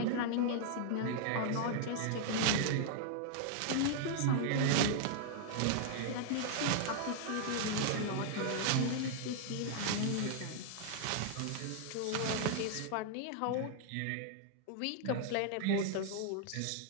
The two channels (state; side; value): different; both; correlation -0.01